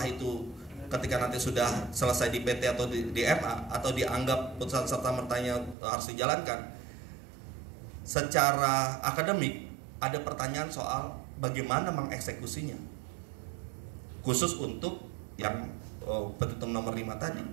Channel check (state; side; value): drops out; left; at 5.8 s